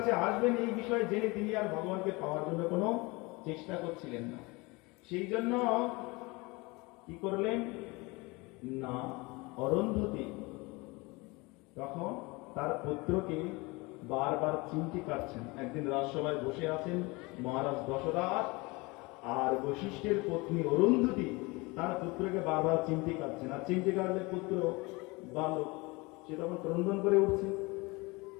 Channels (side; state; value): right; quieter; 24.9 dB